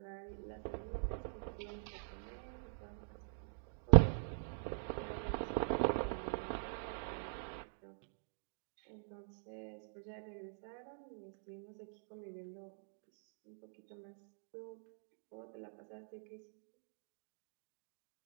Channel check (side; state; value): left; silent; digital silence